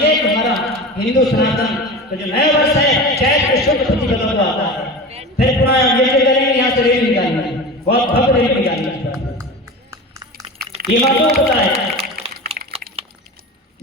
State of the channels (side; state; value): both; normal; correlation 0.31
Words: कि हमारा हिंदू सनातन तो जो नया वर्ष है, चैत के शुद्ध प्रतिपदा को आता है, फिर पुनः ये करेंगे, यहाँ से रेल निकालना, बहुत भव्य रेल निकालना। ये माताओं को पता है।